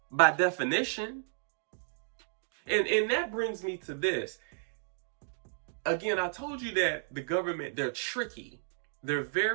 by definition. And that brings me to this. Again, I told you that the government, they're tricky. They're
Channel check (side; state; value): left; silent; digital silence